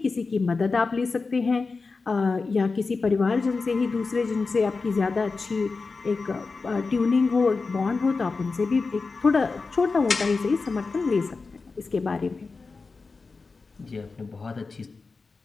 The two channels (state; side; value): quieter; right; 4.2 dB